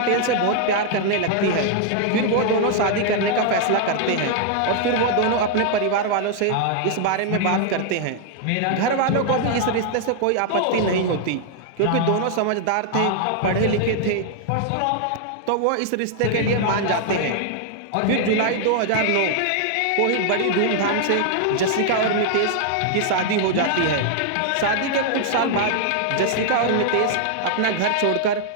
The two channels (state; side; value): different; both; correlation 0.00